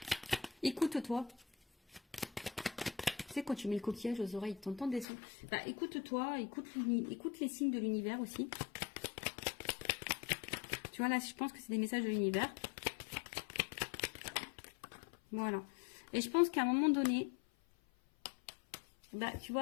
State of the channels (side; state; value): right; drops out; at 5.1 s